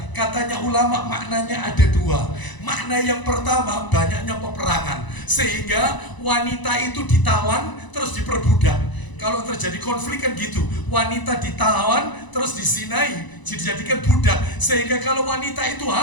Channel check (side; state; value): right; late; 1.0 ms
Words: Katanya ulama maknanya ada 2. Makna yang pertama, banyaknya peperangan, sehingga wanita itu ditawan terus diperbudak. Kalau terjadi konflik kan gitu, wanita ditawan terus disinai, dijadikan budak. Sehingga kalau wanita itu